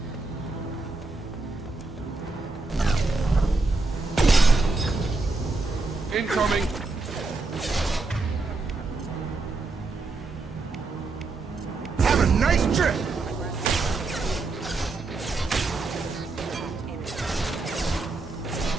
Incoming! Have a nice trip!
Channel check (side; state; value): left; quieter; 3.6 dB